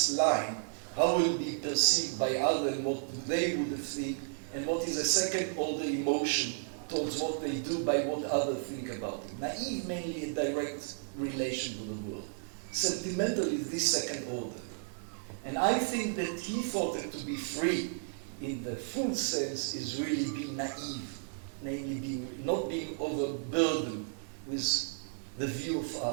line, how will it be perceived by others and what they would think, and what is a second order emotion towards what they do by what others think about it. Naive, mainly a direct relation with the world. Sentimental is this second order. And I think that he thought that to be free in the full sense is really being naive, namely not being overburdened with the view of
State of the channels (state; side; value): silent; left; digital silence